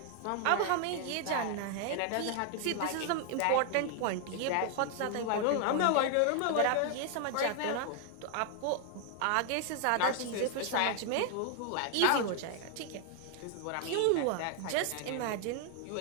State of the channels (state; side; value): different; both; correlation 0.00